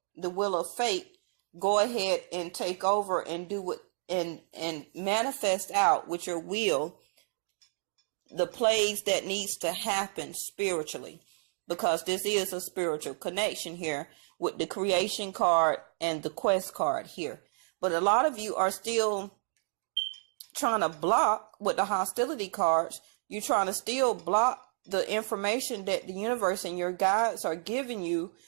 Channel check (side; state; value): left; silent; 57 dB below the other